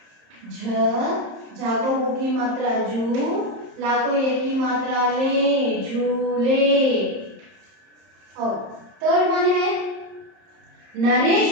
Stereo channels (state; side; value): late; left; 30 ms